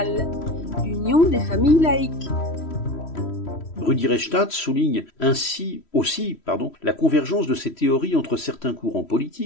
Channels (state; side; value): late; right; 3.1 ms